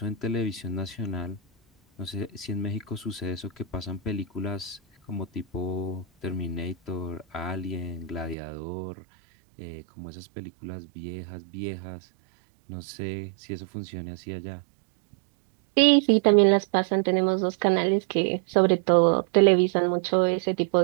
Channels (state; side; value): drops out; left; at 8.3 s